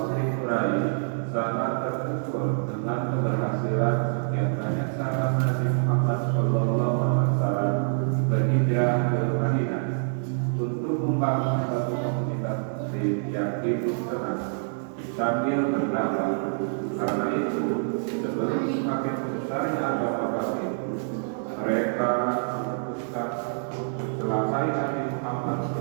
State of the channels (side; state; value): left; silent; digital silence